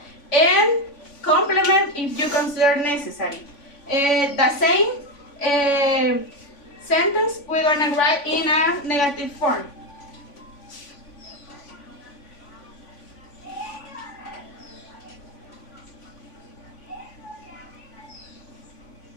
And complement if you consider necessary. The same sentence we're gonna write in a negative form.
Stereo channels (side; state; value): right; late; 3.5 ms